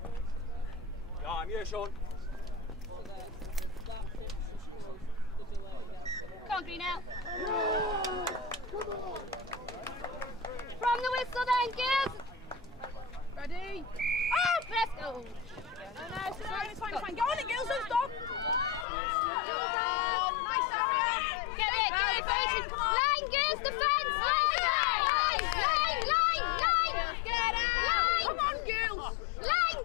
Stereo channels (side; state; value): right; drops out; at 18.9 s